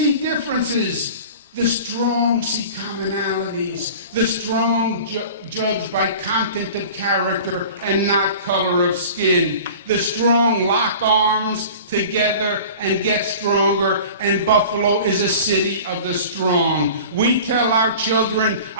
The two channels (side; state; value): both; inverted; correlation -0.40